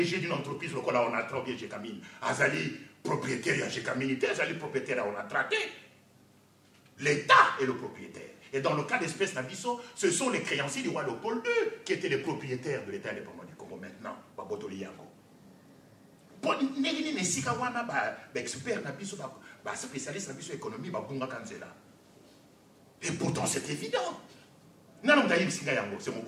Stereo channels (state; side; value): identical; both; correlation 1.00